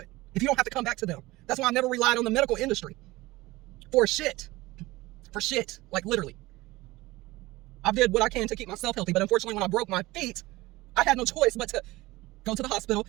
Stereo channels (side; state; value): left; quieter; 19.7 dB